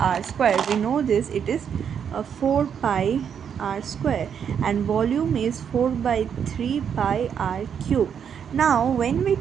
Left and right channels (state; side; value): quieter; left; 7.8 dB